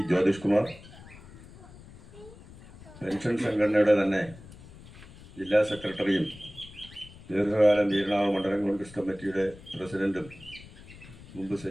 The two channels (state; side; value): noise; left; rumble, 19 dB below the sound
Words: Jyothish Kumar, pension സംഘടനയുടെ തന്നെ ജില്ലാ സെക്രട്ടറിയും ദീർഘകാലം വീരണാവ് മണ്ഡലം കോൺഗ്രസ് കമ്മിറ്റിയുടെ പ്രസിഡന്റും മുമ്പ്